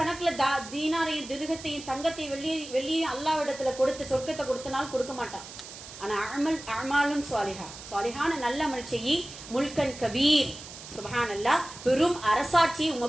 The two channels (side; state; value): right; noise; hiss, 14 dB below the sound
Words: தீனாரையும் திருகத்தையும் தங்கத்தையும் வெள்ளியும் அல்லாஹ்விடத்துல கொடுத்து சொர்க்கத்தை கொடுத்தனாலும் கொடுக்க மாட்டான். ஆனா அமாலும் சாலிஹான நல்ல அமல் செய்யி, முல்கன் கபீர், சுப்ஹானல்லாஹ், பெரும் அரசாட்சியை